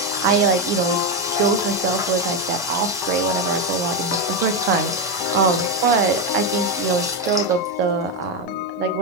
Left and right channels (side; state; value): both; normal; correlation 0.08